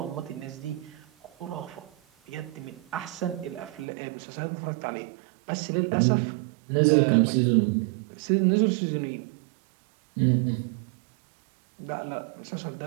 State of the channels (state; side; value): drops out; left; at 3.9 s